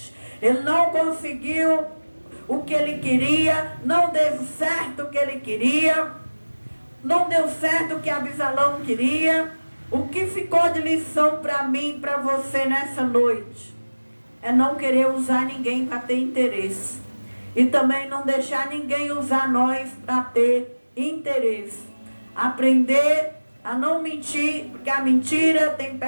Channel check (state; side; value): inverted; both; correlation -1.00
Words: Ele não conseguiu o que ele queria, não deu certo o que ele queria, não deu certo o que Absalão queria. O que ficou de lição para mim e para você nessa noite é não querer usar ninguém para ter interesse, e também não deixar ninguém usar nós para ter interesse. Aprender a não mentir, porque a mentira tem